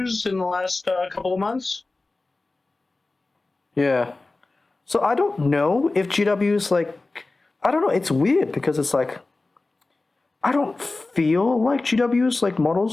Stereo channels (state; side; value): quieter; right; 3.3 dB